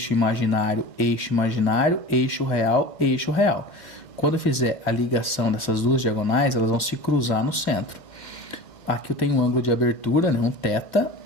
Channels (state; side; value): late; right; 2.2 ms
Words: imaginário, eixo real. Quando eu fizer a ligação dessas duas diagonais, elas vão se cruzar no centro. Aqui eu tenho um ângulo de abertura, né, um θ,